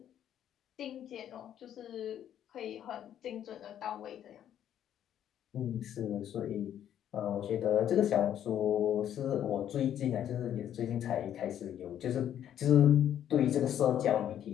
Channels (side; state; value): right; quieter; 10.4 dB